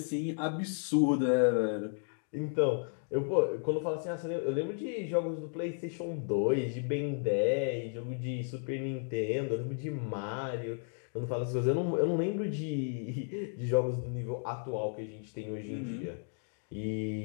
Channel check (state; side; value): silent; right; 55 dB below the other